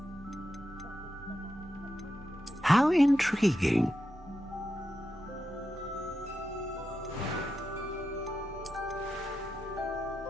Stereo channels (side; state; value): both; normal; correlation 0.88